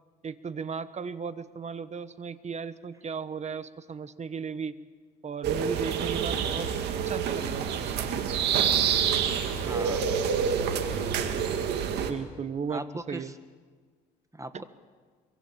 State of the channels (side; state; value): left; quieter; 6.8 dB